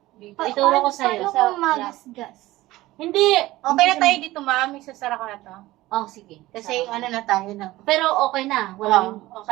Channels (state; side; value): quieter; left; 17.6 dB